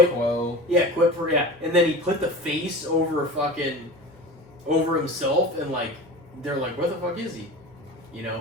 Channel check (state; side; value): normal; both; correlation 0.33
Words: and then he put the face over himself, and like they're like, where the fuck is he? You